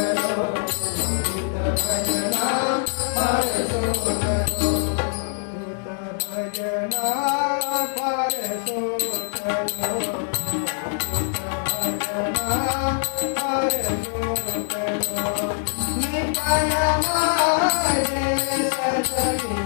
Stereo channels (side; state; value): right; silent; digital silence